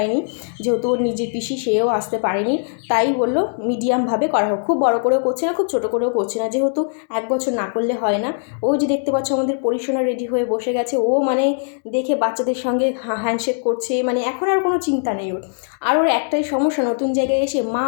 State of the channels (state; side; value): silent; right; digital silence